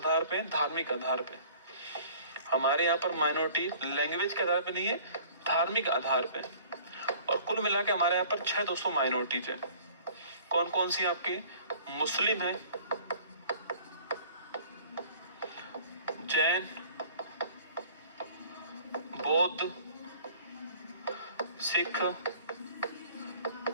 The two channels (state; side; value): inverted; both; correlation -0.50